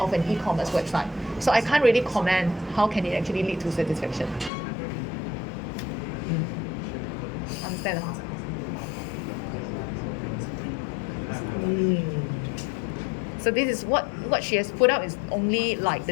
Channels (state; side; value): drops out; right; at 4.5 s